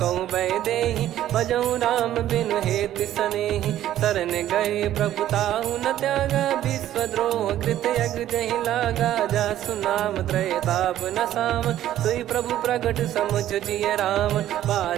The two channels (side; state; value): left; quieter; 12.6 dB